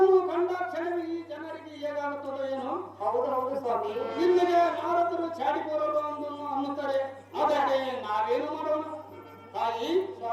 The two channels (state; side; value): identical; both; correlation 1.00